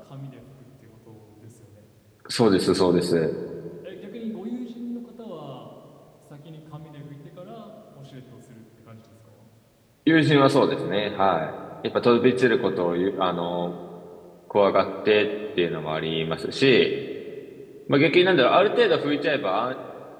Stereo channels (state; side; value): identical; both; correlation 1.00